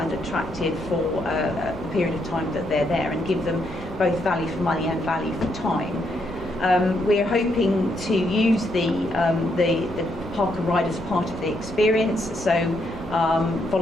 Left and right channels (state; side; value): normal; both; correlation 0.76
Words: attractive for a period of time that they're there, and give them both value for money and value for time. We're hoping to use the park and ride as part of the experience, so